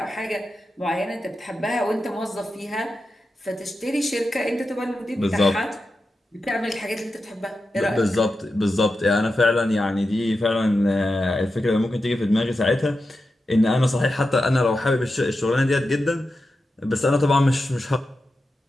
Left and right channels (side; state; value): both; normal; correlation 0.90